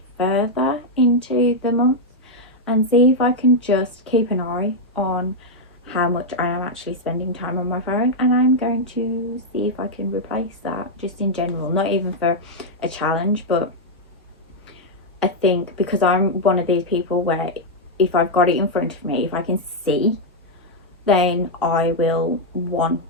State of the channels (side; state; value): both; normal; correlation -0.01